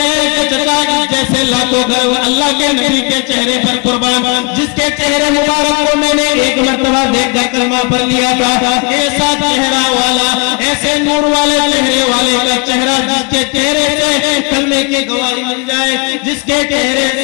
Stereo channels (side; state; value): right; quieter; 31.5 dB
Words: हैं कि चचा जैसे लाखों घर अल्लाह के नबी के चेहरे पर कुर्बान, जिसके चेहरे मुबारक को मैंने एक मर्तबा देखकर कलमा पढ़ लिया था, ऐसा चेहरा वाला, ऐसे नूर वाले चेहरे वाले का चेहरा, जिसके चेहरे से कलमे की गवाही मिल जाए, जिसके चेहरे